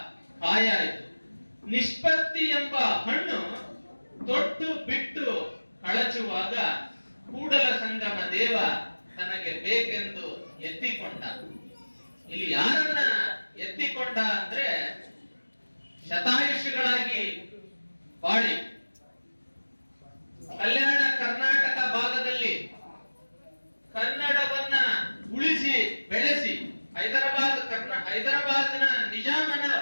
ಕಾಯಾಯಿತು. ನಿಷ್ಪತ್ತಿ ಎಂಬ ಹಣ್ಣು ತೊಟ್ಟು ಬಿಟ್ಟು ಕಳಚುವಾಗ ಕೂಡಲ ಸಂಗಮ ದೇವ ತನಗೆ ಬೇಕೆಂದು ಎತ್ತಿಕೊಂಡ. ಇಲ್ಲಿ ಯಾರನ್ನ ಎತ್ತಿಕೊಂಡ ಅಂದ್ರೆ ಶತಾಯುಷಿಗಳಾಗಿ ಬಾಳಿ ಕಲ್ಯಾಣ ಕರ್ನಾಟಕ ಭಾಗದಲ್ಲಿ ಕನ್ನಡವನ್ನ ಉಳಿಸಿ ಬೆಳೆಸಿ ಹೈದರಾಬಾದ್ನ ನಿಜಾಮನ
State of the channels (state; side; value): inverted; both; correlation -1.00